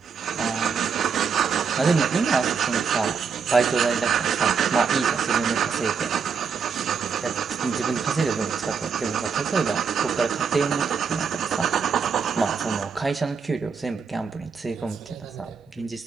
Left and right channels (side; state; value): left; quieter; 6.0 dB